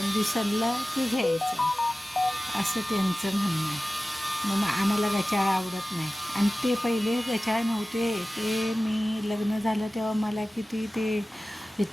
की घ्यायचं, असं त्यांचं म्हणणं आहे. मग आम्हाला गचाळ आवडत नाही. आणि ते पहिले गचाळ नव्हते, ते मी लग्न झालं तेव्हा मला किती ते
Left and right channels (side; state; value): both; normal; correlation 0.96